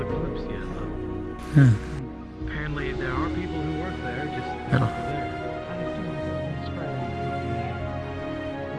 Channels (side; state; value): both; identical; correlation 1.00